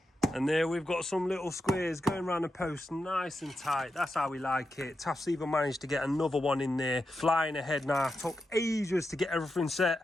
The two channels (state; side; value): normal; both; correlation 0.88